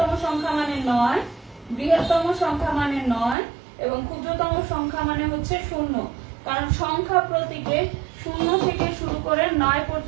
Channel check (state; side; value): drops out; left; at 3.4 s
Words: সংখ্যা মানে 9, এবং ক্ষুদ্রতম সংখ্যা মানে হচ্ছে 0, কারণ সংখ্যা প্রতীকে 0 থেকে শুরু করে 9